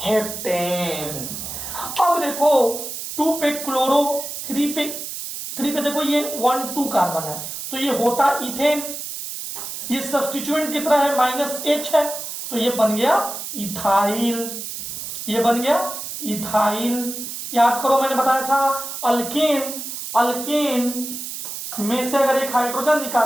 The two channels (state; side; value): noise; right; hiss, 7 dB below the sound